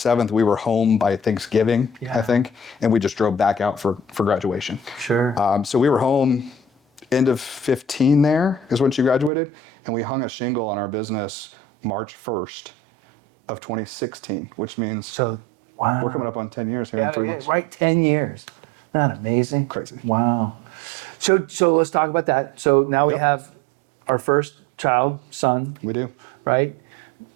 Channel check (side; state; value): left; drops out; at 9.3 s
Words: We were home by Thanksgiving, I think. And we just drove back out for graduation. Sure. So we were home end of 15 there is when she graduated. And we hung a shingle on our business March 1st of 2016, which means wow. We're coming up on 10 years here in 3 months. Right, 10 years. Isn't that amazing? Crazy. Wow. So let's talk about that. So now we have our first child, son. We do. Right?